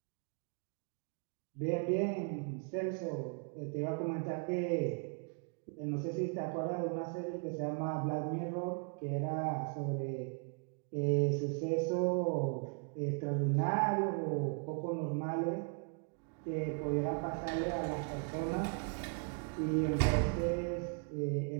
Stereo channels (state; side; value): quieter; left; 38.6 dB